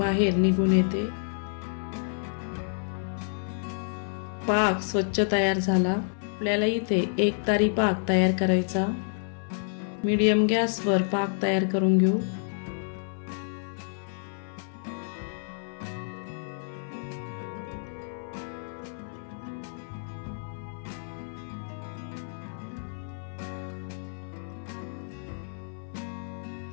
निघून येते। पाक स्वच्छ तयार झाला। आपल्याला इथे 1 तारी पाक तयार करायचा। मीडियम गॅसवर पाक तयार करून घेऊ।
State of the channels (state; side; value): silent; right; 58 dB below the other